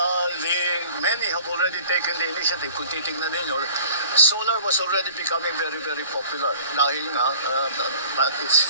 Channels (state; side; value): inverted; both; correlation -0.48